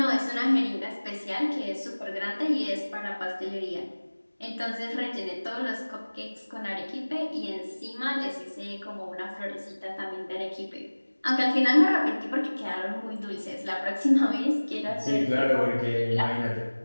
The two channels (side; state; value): both; inverted; correlation -1.00